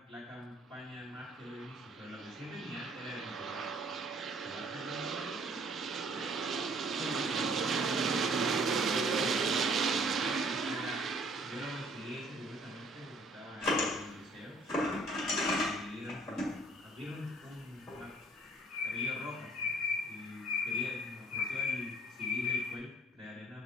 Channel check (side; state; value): both; normal; correlation 0.58